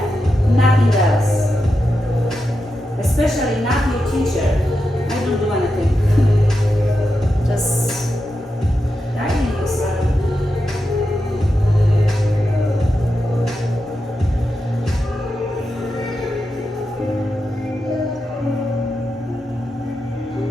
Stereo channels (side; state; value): both; normal; correlation 0.88